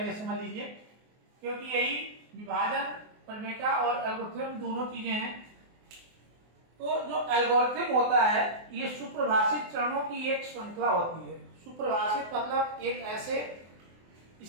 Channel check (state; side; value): late; left; 24 ms